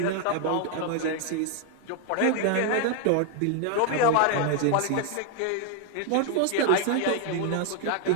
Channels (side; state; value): both; different; correlation 0.00